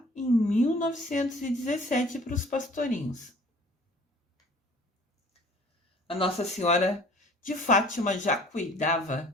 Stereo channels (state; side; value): normal; both; correlation 0.51